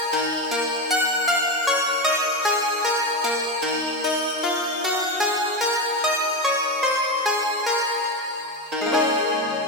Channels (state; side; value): normal; both; correlation 0.15